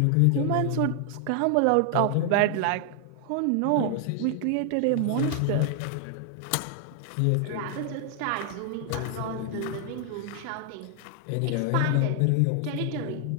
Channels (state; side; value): different; both; correlation 0.00